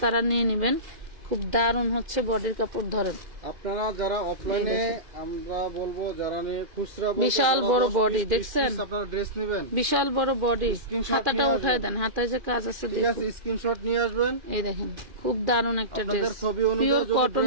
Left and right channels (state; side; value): late; left; 2.4 ms